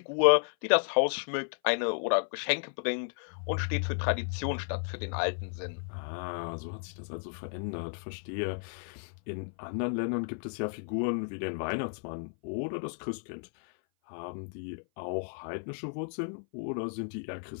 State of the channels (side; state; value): right; silent; 56 dB below the other